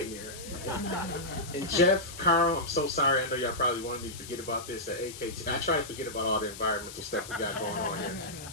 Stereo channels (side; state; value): left; noise; hiss, 13 dB below the sound